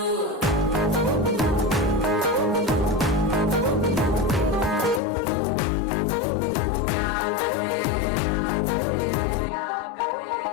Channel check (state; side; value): drops out; right; at 5.0 s